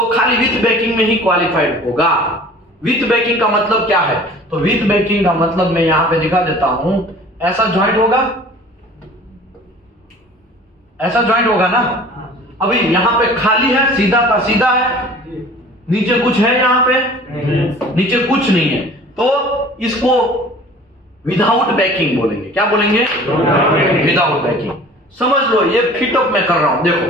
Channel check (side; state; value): both; normal; correlation 0.46